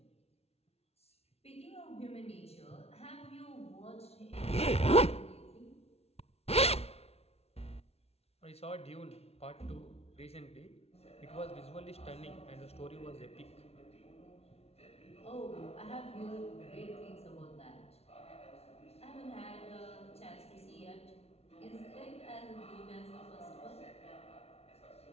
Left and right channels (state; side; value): late; right; 0.30 ms